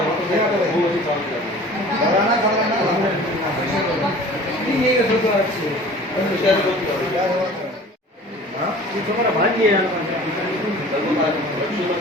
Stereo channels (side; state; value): both; normal; correlation 0.44